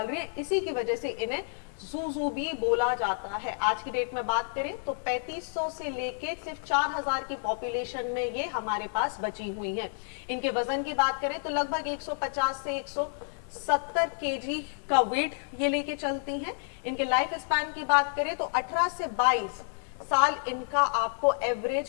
रही है। इसी की वजह से इन्हें सूसू भी बोला जाता है। आज की डेट में बात करें तो 3500 से लेके सिर्फ 4000 की पॉपुलेशन में ये हमारे पास बची हुई हैं। इनके वजन की बात करें तो लगभग 150 से 170 केजी का वेट ये लेके चलती हैं। इनके लाइफ स्पैन की बात करें तो 18 से 22 साल इनका आपको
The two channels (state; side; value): silent; right; digital silence